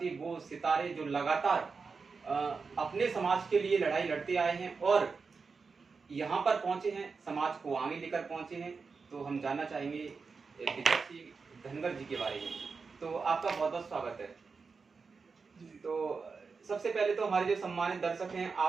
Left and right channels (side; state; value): left; quieter; 4.8 dB